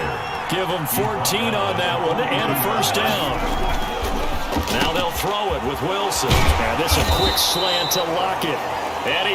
Give him 14 on that one and a 1st down. Now they'll throw it with Wilson. And this a quick slant to Lockett. And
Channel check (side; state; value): both; identical; correlation 1.00